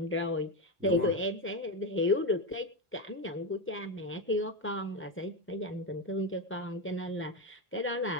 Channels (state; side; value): normal; both; correlation 0.12